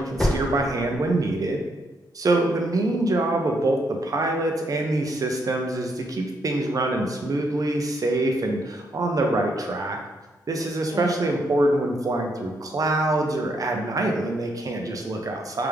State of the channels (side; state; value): both; normal; correlation 0.75